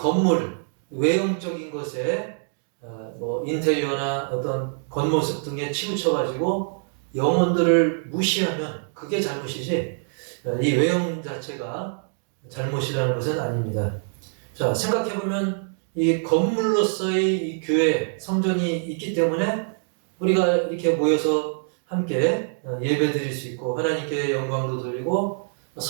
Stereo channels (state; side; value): silent; left; 62 dB below the other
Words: 외형적인 것에 인테리어나 어떤 겉모습 등에 치우쳐가지고 영혼들을 무시하면 그게 잘못이지, 이 외형 자체가 잘못이라는 것은 아닙니다. 자, 생각해보면 이 건물로서의 이 교회, 성전이 있기 때문에 우리가 이렇게 모여서 함께 예배 드릴 수 있고, 하나님께 영광도 돌리고,